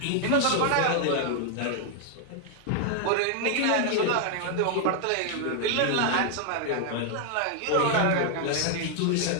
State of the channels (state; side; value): different; both; correlation 0.00